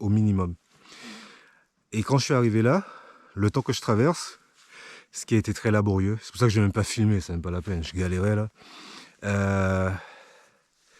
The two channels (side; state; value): both; identical; correlation 1.00